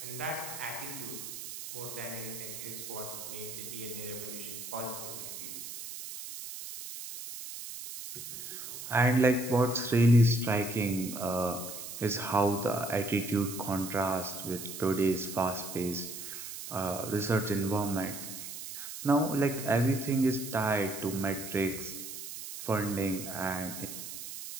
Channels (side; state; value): right; noise; hiss, 9 dB below the sound